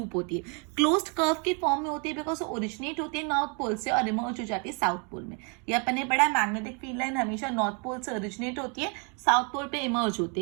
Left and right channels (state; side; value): quieter; left; 36.3 dB